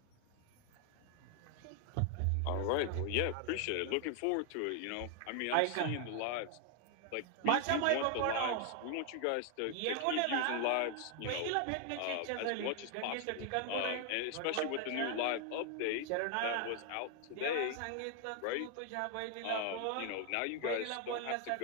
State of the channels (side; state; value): both; different; correlation 0.00